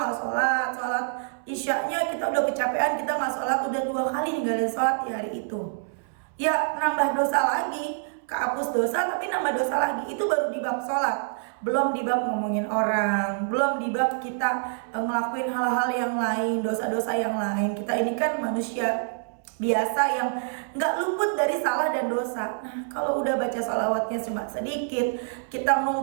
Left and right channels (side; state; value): left; silent; 61 dB below the other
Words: sholat isyaknya kita udah kecapean kita nggak sholat, udah 2 kali ninggalin sholat di hari itu. Ya nambah dosa lagi, kehapus dosa tapi nambah dosa lagi. Itu baru di bab sholat, belum di bab ngomongin orang, belum di bab kita ngelakuin hal-hal yang lain, dosa-dosa yang lain. Kita ini kan manusia biasa yang nggak luput dari salah dan dosa. Nah kalau udah baca sholawatnya cuma sedikit, kita